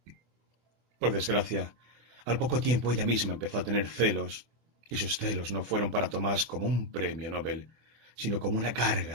Por desgracia, al poco tiempo ella misma empezó a tener celos, y sus celos no fueron para Tomás como un premio Nobel, sino como una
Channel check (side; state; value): left; late; 24 ms